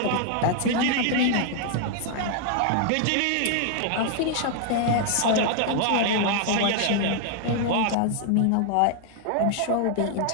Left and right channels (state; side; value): different; both; correlation 0.00